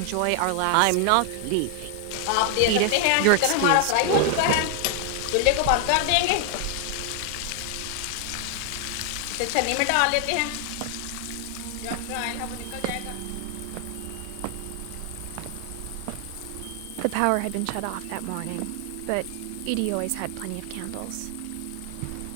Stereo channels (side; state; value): both; different; correlation 0.00